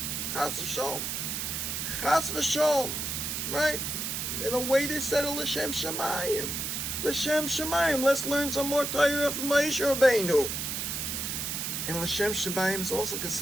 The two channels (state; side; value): noise; right; hiss, 3 dB below the sound